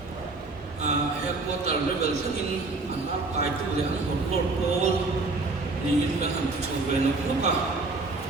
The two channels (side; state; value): left; quieter; 3.4 dB